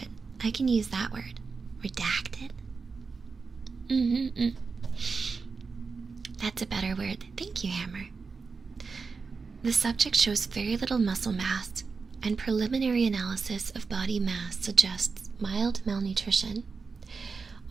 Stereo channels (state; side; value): quieter; left; 4.8 dB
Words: I can use that word. Redacted. That's a better word. Thank you, Hammer. The subject shows very little muscle mass, and preliminary analysis of body mass suggests mild malnutrition.